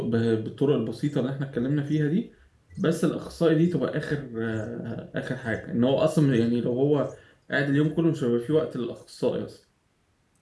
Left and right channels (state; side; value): identical; both; correlation 1.00